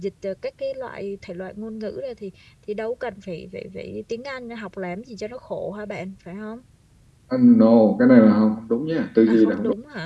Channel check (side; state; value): both; identical; correlation 1.00